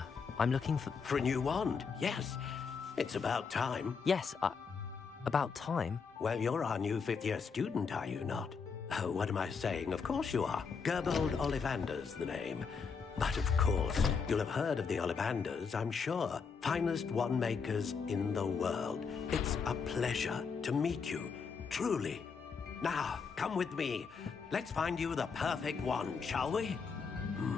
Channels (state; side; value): quieter; right; 5.6 dB